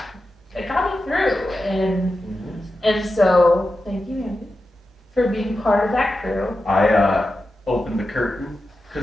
It got me through, and so thank you, Andy, for being part of that crew. I opened the curtain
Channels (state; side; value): normal; both; correlation 0.91